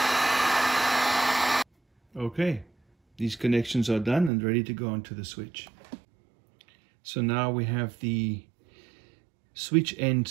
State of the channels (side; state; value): left; drops out; at 4.3 s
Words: Okay, these connections are done and ready to go onto the switch. So now we have the switch end